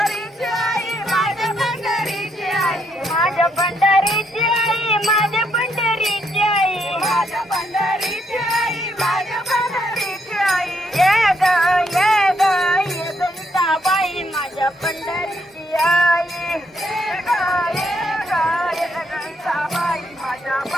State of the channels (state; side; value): normal; both; correlation 0.75